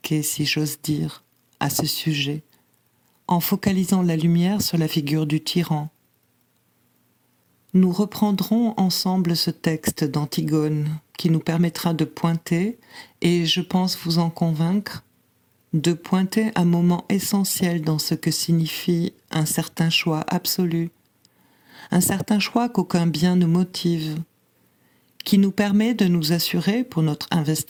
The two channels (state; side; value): identical; both; correlation 1.00